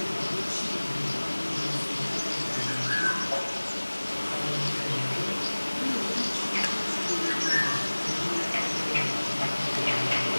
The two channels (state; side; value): inverted; both; correlation -1.00